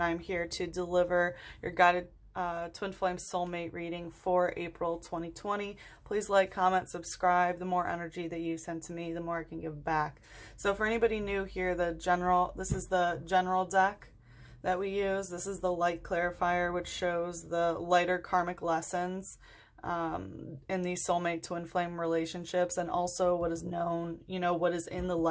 I'm here to deliver your guided Twin Flame Soulmate reading for April 2020. Please like, comment, subscribe. The more energy that you send to me, the more I can give back. So for anybody new here, this is the general deck that we use. This is the light clarifier, which shows the lighter karmic lessons in these soulmate twin flame relationships, and also what is known, what is in the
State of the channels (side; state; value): both; identical; correlation 1.00